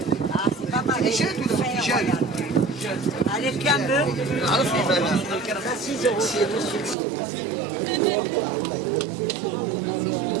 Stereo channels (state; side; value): drops out; left; at 7.0 s